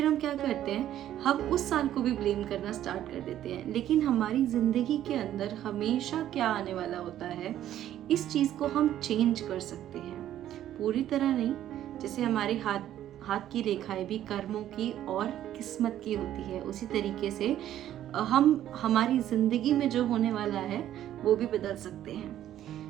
हम क्या करते हैं, हम उस साल को भी ब्लेम करना स्टार्ट कर देते हैं। लेकिन हमारी ज़िंदगी के अंदर हमेशा क्या आने वाला होता है, इस चीज़ को हम चेंज कर सकते हैं। पूरी तरह नहीं, जैसे हमारे हाथ की रेखाएं भी कर्मों की और किस्मत की होती है, उसी तरीके से हम हमारी ज़िंदगी में जो होने वाला है वो भी बदल सकते हैं।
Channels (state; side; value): quieter; left; 11.9 dB